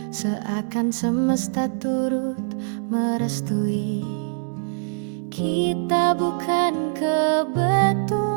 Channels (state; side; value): silent; left; digital silence